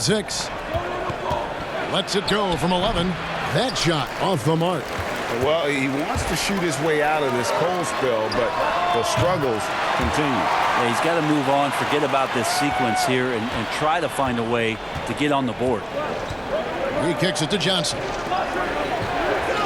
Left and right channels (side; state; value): both; identical; correlation 1.00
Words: 6. Lets it go from 11. That shot off the mark. Well, he wants to shoot his way out of this cold spell, but the struggles continue. Yeah, he's got to move on, forget about this sequence here, and try to find a way to get on the board. He kicks it to Johnson.